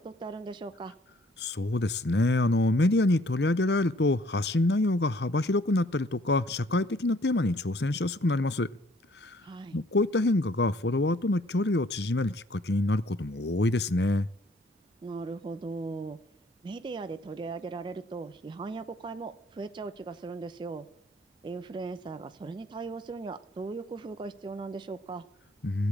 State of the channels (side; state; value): both; normal; correlation 0.60